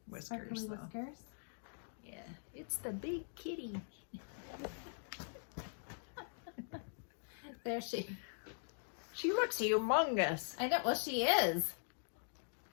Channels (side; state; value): right; silent; digital silence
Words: whiskers, Sparkly though. whiskers. Yeah, it's the big kitty. There she. She looks humongous. I know. Well, she is.